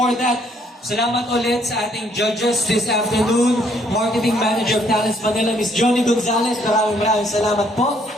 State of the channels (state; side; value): normal; both; correlation 0.67